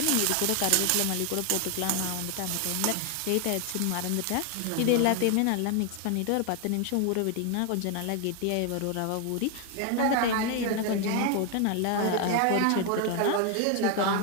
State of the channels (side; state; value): both; different; correlation 0.01